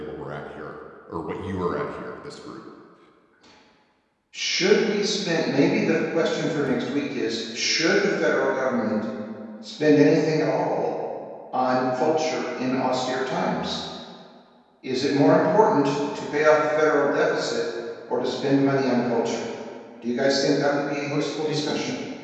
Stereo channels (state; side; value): identical; both; correlation 1.00